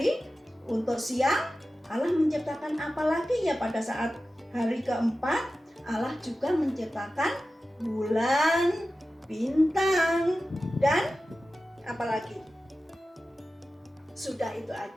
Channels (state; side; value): normal; both; correlation 0.94